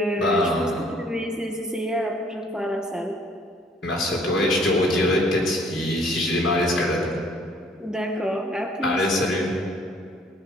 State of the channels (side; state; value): both; normal; correlation 0.60